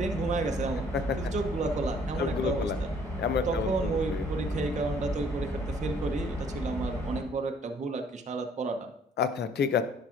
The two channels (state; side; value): normal; both; correlation 0.60